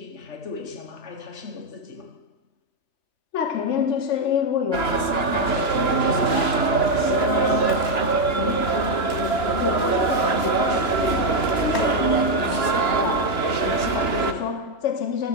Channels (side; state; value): right; late; 2.9 ms